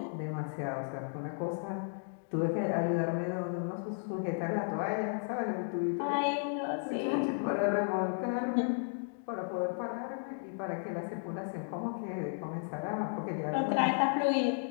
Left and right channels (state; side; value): silent; right; digital silence